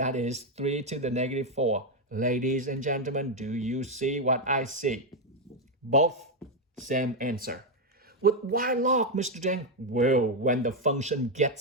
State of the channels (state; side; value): normal; both; correlation 0.04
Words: is 3 to the negative 4. Ladies and gentlemen, do you see what I see? Both same answer. With why log, Mr. Deng? Well, when the function